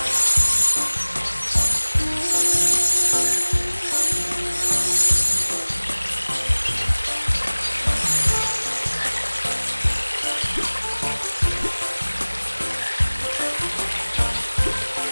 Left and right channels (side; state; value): both; inverted; correlation -1.00